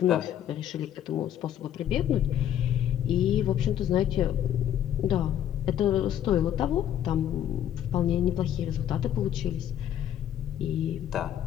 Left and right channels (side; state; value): right; quieter; 10.6 dB